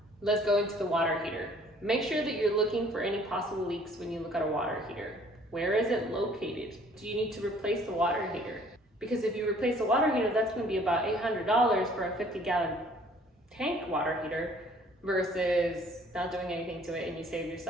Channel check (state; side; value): normal; both; correlation 0.57